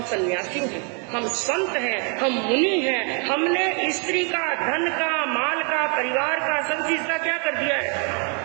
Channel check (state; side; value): quieter; left; 37.6 dB